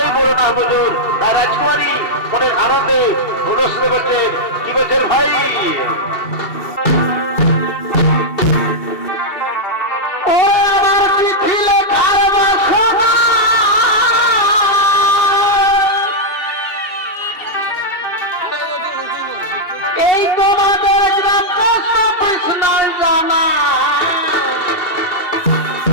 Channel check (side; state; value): right; late; 2.8 ms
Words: বড় না বুঝুন তাই রাজকুমারী মনের আনন্দে অনুষ্ঠিত করছেন কি বলছেন ভাই এই